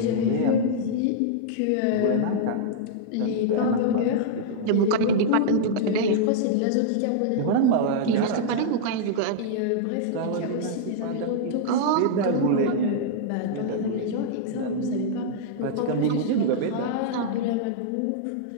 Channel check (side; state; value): both; different; correlation -0.02